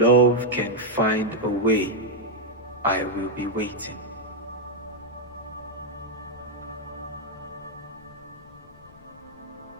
can find a way, I will be waiting.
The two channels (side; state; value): left; noise; rumble, 24 dB below the sound